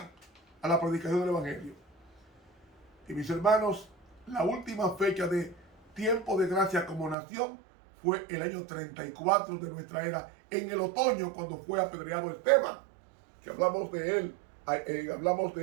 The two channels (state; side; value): drops out; left; at 7.2 s